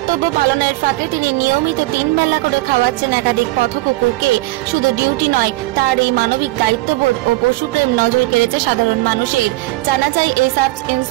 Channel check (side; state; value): left; quieter; 19.6 dB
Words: পালনের ফাঁকে তিনি নিয়মিত 3 বেলা করে খাওয়াচ্ছেন একাধিক পথ কুকুরকে। শুধু ডিউটি নয়, তার এই মানবিক দায়িত্ববোধ ও পশুপ্রেম নজর কেড়েছে সাধারণ মানুষের। জানা যায় এই সাব